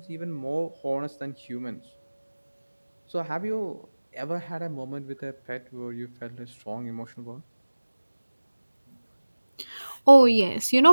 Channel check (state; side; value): inverted; both; correlation -1.00